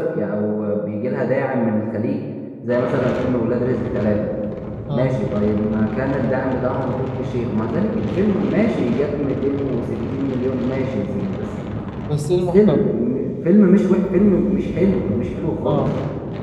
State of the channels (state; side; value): identical; both; correlation 1.00